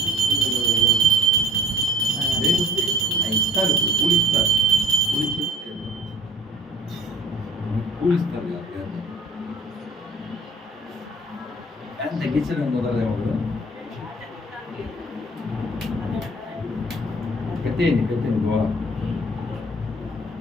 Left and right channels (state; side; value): normal; both; correlation 0.51